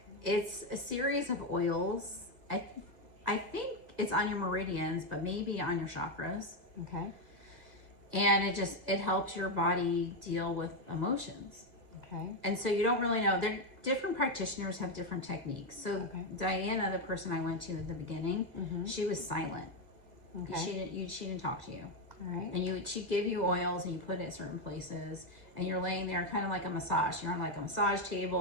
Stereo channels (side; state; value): left; late; 2.0 ms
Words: It's a series of oils. I think it's on your meridians, but maybe on your chakras. Okay. And it helps your body deal with emotions. Okay. And so you don't really know. Different practitioners have different techniques. So Diana, the person I went to at the beginning, she was silent. Okay. She didn't talk to you. All right. And she'd give you oils and you put it at certain places, and you're laying there kind of like a massage. You're on like a massage